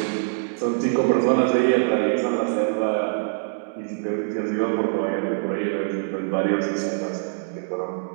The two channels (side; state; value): left; silent; digital silence